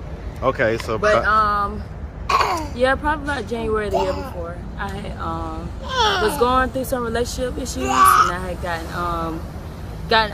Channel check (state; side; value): identical; both; correlation 1.00